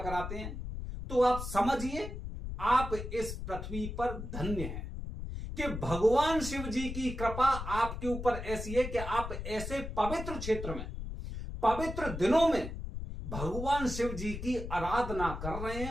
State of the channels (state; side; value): noise; left; rumble, 7 dB below the sound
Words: हैं, तो आप समझिए आप इस पृथ्वी पर धन्य हैं कि भगवान शिव जी की कृपा आपके ऊपर ऐसी है कि आप ऐसे पवित्र क्षेत्र में पवित्र दिनों में भगवान शिव जी की आराधना कर रहे